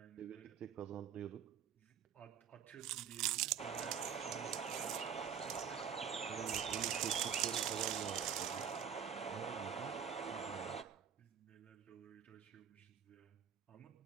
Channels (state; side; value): quieter; left; 8.0 dB